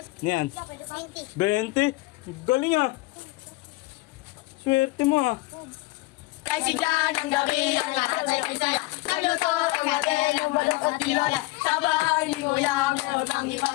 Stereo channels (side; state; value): right; quieter; 20.9 dB